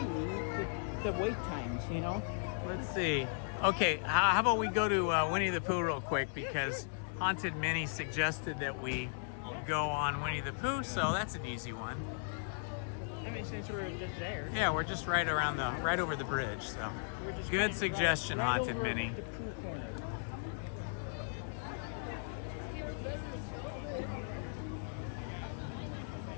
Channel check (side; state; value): right; silent; digital silence